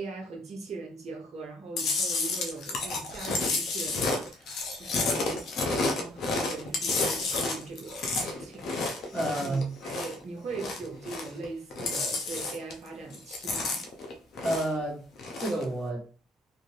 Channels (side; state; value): both; normal; correlation 0.61